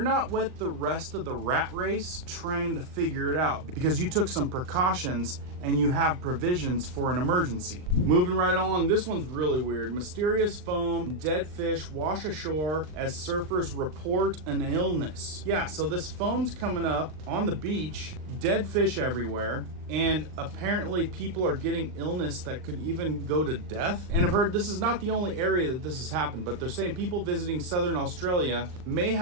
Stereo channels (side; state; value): left; late; 39 ms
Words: not with the rest of the rat race trying to figure it out because you took some precautions and you have provisions for an emergency. Moving right along, this one's really weird. Mysterious foam, dead fish wash ashore as surfers report an illness. Yeah, so this foam's coming up on the beach, dead fish everywhere, and apparently people are getting illness that could even go to death. And I've heard this is not the only area that this has happened, but they're saying people visiting southern Australia may